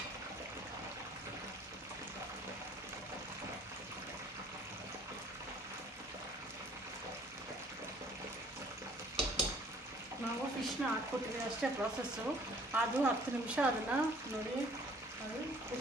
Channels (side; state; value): both; normal; correlation 0.56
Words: ನಾವು ಫಿಶ್ನ ಹಾಕ್ಕೊಟ್ಟಿವಿ ಅಷ್ಟೇ ಪ್ರಾಸೆಸ್ಸು. ಅದು 10 ನಿಮಿಷ ಅದನ್ನು ನೋಡಿ, ಅದು